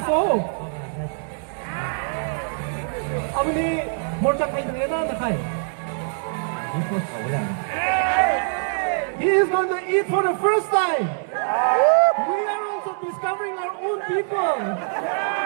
아버님 몰짝 하이드 예나는 하이. He is going to eat for the first time. We are also discovering our own people.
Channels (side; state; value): left; silent; digital silence